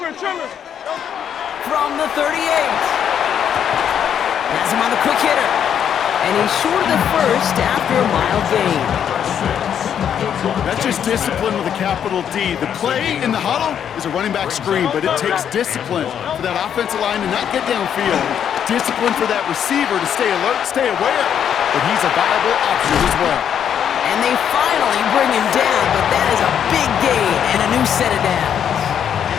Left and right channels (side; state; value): right; quieter; 8.8 dB